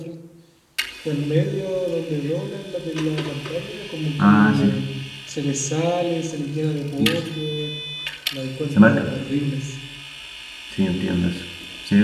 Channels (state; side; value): identical; both; correlation 1.00